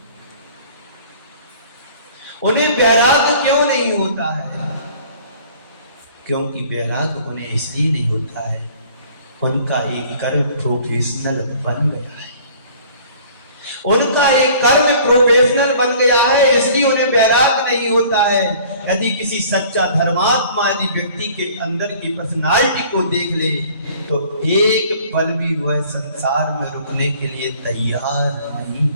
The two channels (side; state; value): both; inverted; correlation -0.51